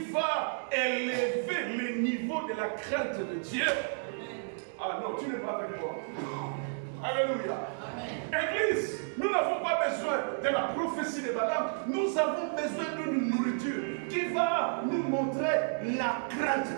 va élever le niveau de la crainte de Dieu. Ah non, tu n'es pas avec moi. Alléluia. Église, nous n'avons pas besoin de la prophétie de Balaam. Nous avons besoin d'une nourriture qui va nous montrer la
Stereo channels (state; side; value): silent; left; digital silence